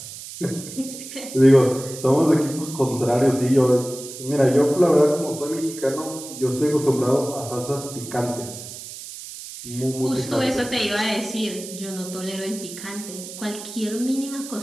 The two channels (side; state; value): right; noise; hiss, 12 dB below the sound